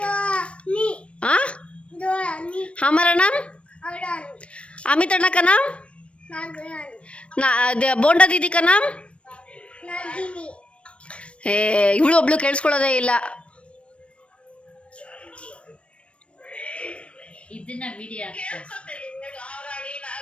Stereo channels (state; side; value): late; right; 0.061 ms